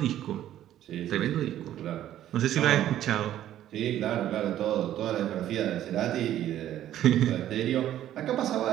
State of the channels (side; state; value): left; quieter; 12.1 dB